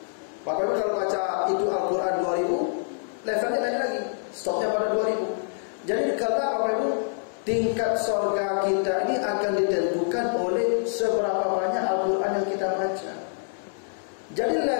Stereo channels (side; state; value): right; silent; 61 dB below the other